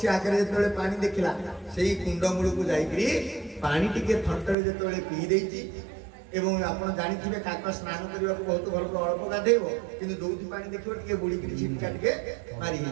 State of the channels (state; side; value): drops out; left; at 4.5 s